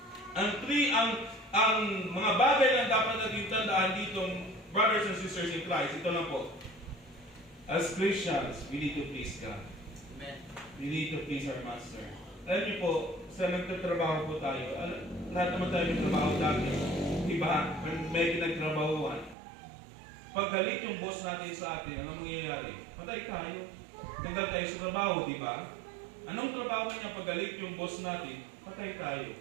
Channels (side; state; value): left; drops out; at 19.4 s